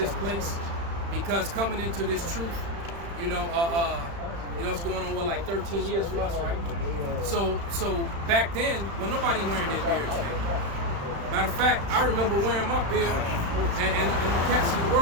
place, because coming into this truth, it's going on like 13 years for us, right? So back then, when nobody wearing their beards, man. Matter of fact, I remember wearing my beard, and the cats in the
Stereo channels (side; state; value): left; late; 35 ms